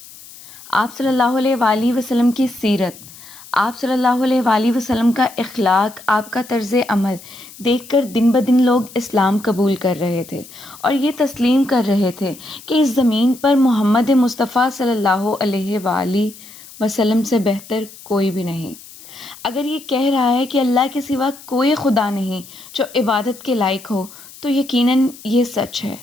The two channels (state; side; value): noise; left; hiss, 19 dB below the sound